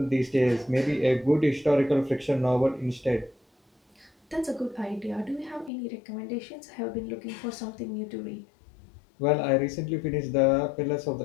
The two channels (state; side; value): drops out; right; at 5.7 s